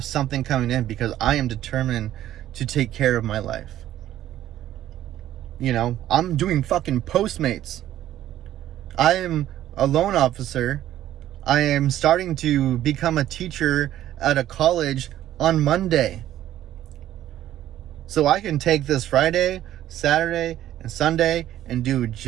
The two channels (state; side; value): quieter; left; 12.7 dB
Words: something coming in? Because I am determined to take care of my life. You know, I'm doing fucking Postmates. I am a loan officer. I am starting to become a teacher at a college on Monday. So I can take this Friday, Saturday, and Sunday and do